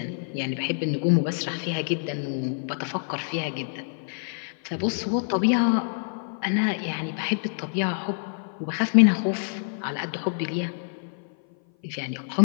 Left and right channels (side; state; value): right; silent; 56 dB below the other